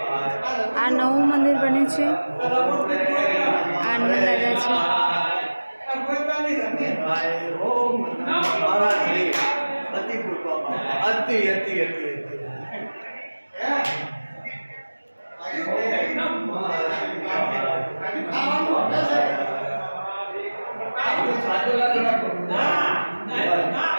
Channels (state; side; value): inverted; both; correlation -1.00